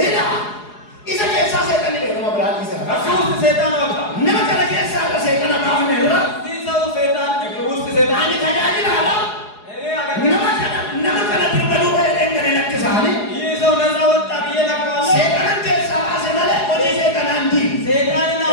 ኢዘ ከሳ ሰይጣን ነው ብራል ይሰራ ከሱስ ሰይጣን ወጣ ነመከለ ከሳ ሰይጣን ማሁን ነው ሰው ሰይጣን ውስጥ ሰይጣን አኒ ታጃጅል አላ ነመከለ ድርበሉ ወይደን ለክሳኒ ይህ ሰው ነፃ ወጣ ብዬ ነግረዋለሁ ሰይጣን ከሳ ባሰመለ ኦጂ ሰይጣን አንዲ ሰይጣንን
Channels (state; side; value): late; right; 4.8 ms